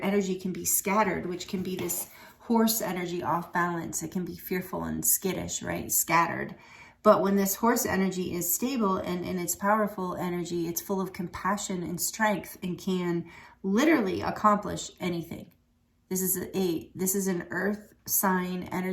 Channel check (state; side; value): identical; both; correlation 1.00